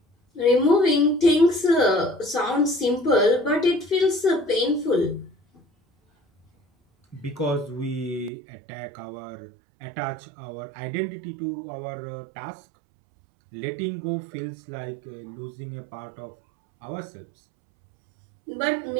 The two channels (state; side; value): drops out; left; at 8.3 s